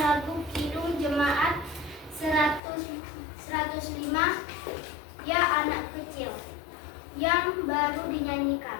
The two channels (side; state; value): right; drops out; at 2.6 s